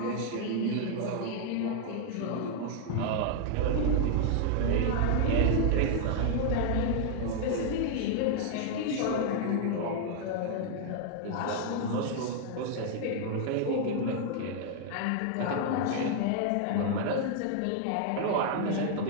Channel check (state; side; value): different; both; correlation 0.00